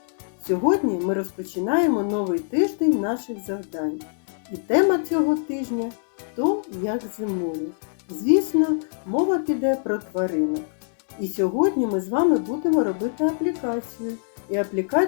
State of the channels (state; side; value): silent; right; digital silence